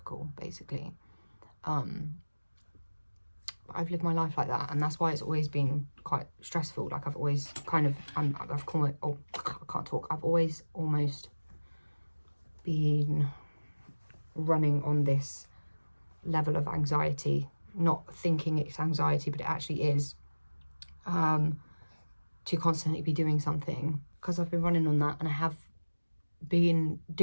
basically. I've lived my life like that, and that's why it's always been quite stressful. Like, I've always kind of, I've called it, oh, I can't talk. I've always almost been running on this level of anxiety, not thinking it's anxiety, but it actually is, to constantly be doing something, because I've been running on that, and I have been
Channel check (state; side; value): inverted; both; correlation -1.00